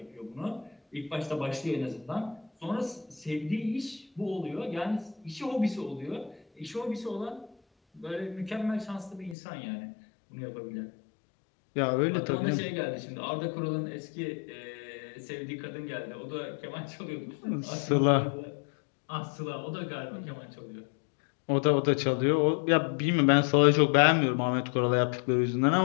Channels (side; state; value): right; drops out; at 9.3 s